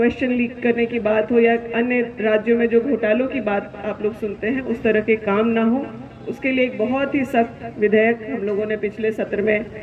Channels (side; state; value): both; identical; correlation 1.00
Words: लीक करने की बात हो या अन्य राज्यों में जो घोटालों की बात आप लोग सुनते हैं उस तरह के काम ना हो। उसके लिए एक बहुत ही सख्त विधेयक हम लोगों ने पिछले सत्र में